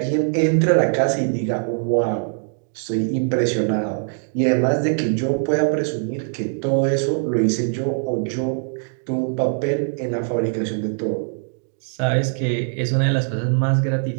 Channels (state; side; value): silent; left; digital silence